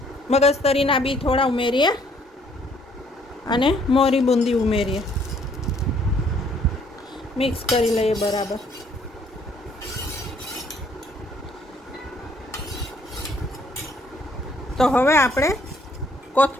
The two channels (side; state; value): both; normal; correlation 0.64